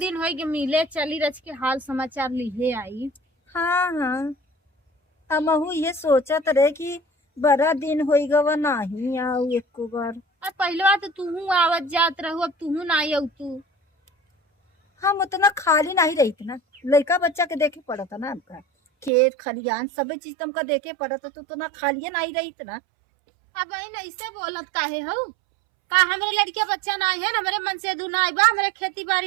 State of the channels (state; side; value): drops out; left; at 19.1 s